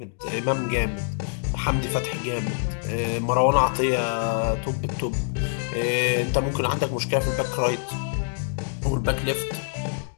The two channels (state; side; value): silent; right; digital silence